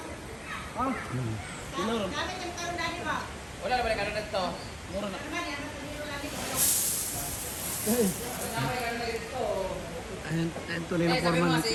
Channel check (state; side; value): identical; both; correlation 1.00